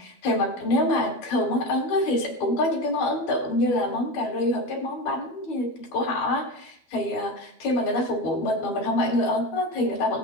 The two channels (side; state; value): right; late; 12 ms